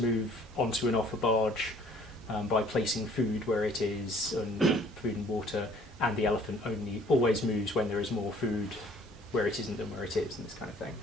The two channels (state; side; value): normal; both; correlation 0.56